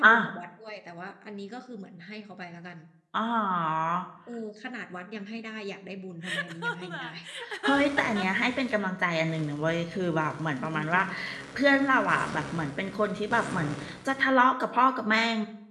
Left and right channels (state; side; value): identical; both; correlation 1.00